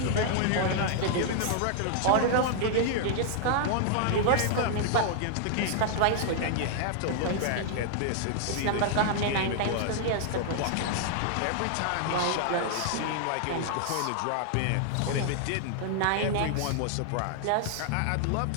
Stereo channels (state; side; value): different; both; correlation -0.01